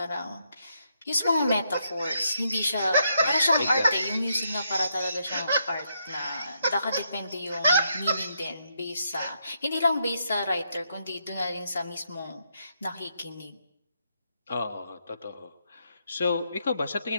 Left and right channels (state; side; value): inverted; both; correlation -0.78